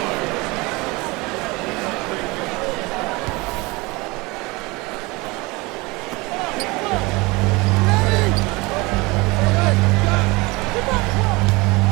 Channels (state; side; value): quieter; left; 24.4 dB